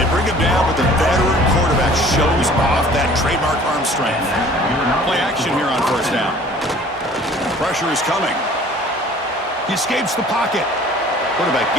bring him down, but the veteran quarterback shows off that trademark arm strength. Play action here on first down. Pressure is coming. He escapes the pocket. Quarterback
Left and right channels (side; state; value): both; normal; correlation 0.50